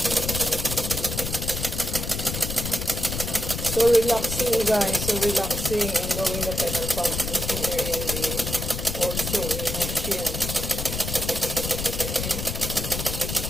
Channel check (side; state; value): left; noise; rumble, 4 dB below the sound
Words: So relaxing guys, so relaxing and going the pedal pumping here in the also in the machine.